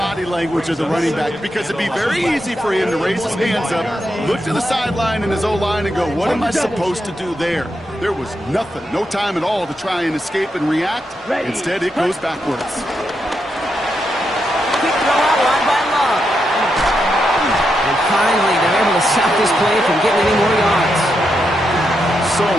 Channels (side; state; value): both; normal; correlation 0.84